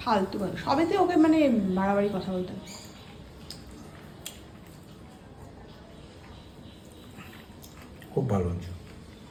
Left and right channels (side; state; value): both; identical; correlation 1.00